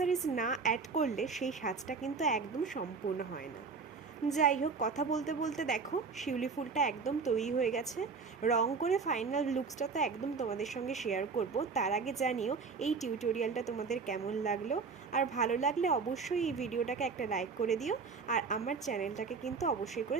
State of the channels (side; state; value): left; quieter; 4.9 dB